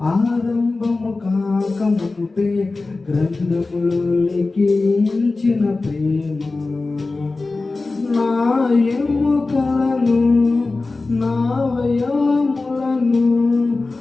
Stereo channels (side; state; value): right; quieter; 3.5 dB